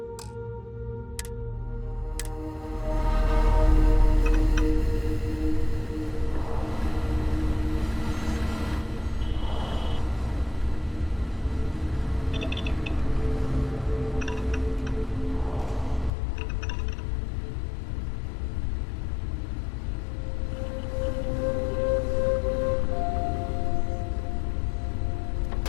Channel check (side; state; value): right; drops out; at 16.1 s